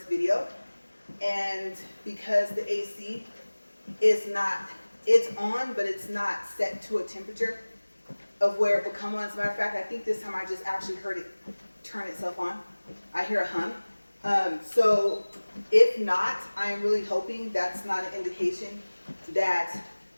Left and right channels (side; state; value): both; inverted; correlation -1.00